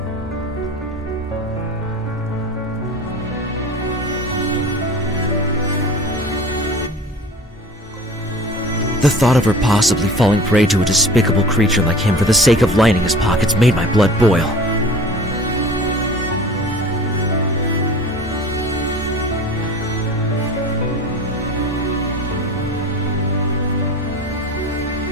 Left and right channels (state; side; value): normal; both; correlation 0.40